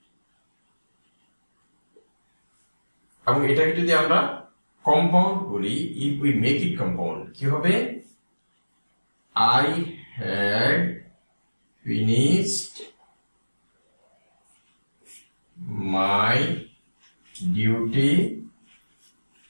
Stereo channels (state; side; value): inverted; both; correlation -1.00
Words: এবং এটাকে যদি আমরা কম্পাউন্ড করি, if we make it compound কি হবে, I had finished my duty